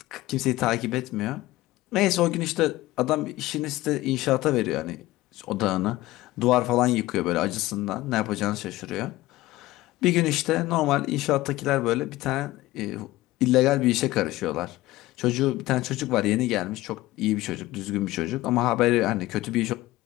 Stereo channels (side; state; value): right; quieter; 17.7 dB